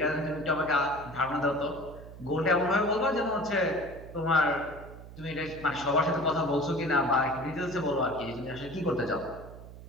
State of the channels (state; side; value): noise; right; hum, 15 dB below the sound